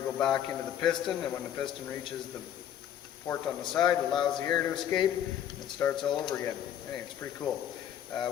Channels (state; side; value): quieter; right; 10.2 dB